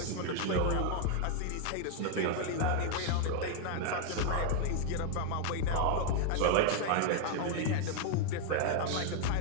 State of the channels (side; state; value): both; different; correlation 0.00